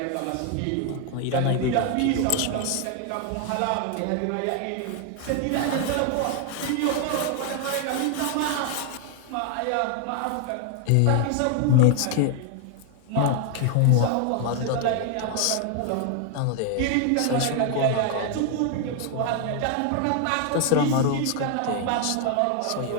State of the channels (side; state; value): both; different; correlation 0.00